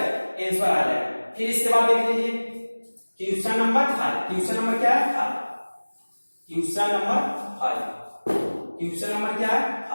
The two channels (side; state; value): both; inverted; correlation -1.00